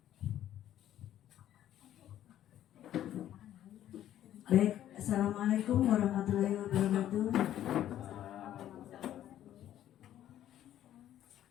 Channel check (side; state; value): right; quieter; 11.9 dB